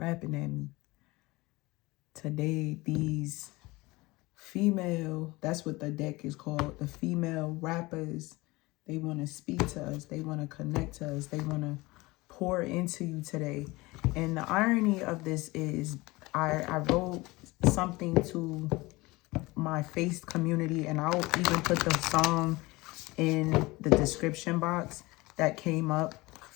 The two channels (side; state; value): right; quieter; 21.9 dB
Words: at me. Today, these female, that's what the deck is called, the female rappers, they want to speak to us. They want to connect to us. They want to pour into you today. And the irony of this is I wrote something to my Face community, and I'll even put the song in the description box that came up